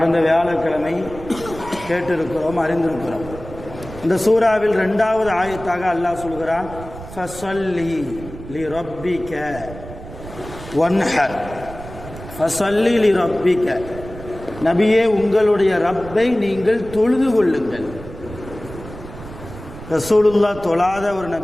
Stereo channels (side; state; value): right; noise; rumble, 14 dB below the sound